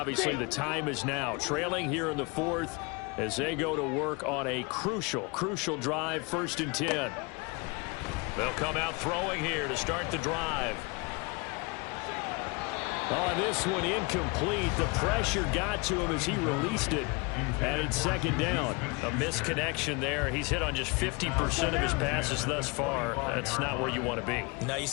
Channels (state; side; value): quieter; right; 28.6 dB